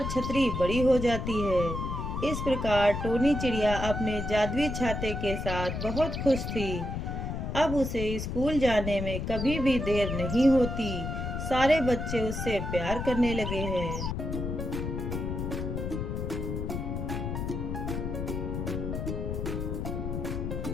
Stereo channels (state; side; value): noise; left; rumble, 3 dB below the sound